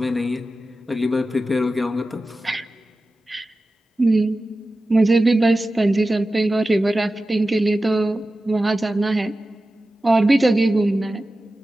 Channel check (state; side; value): normal; both; correlation 0.94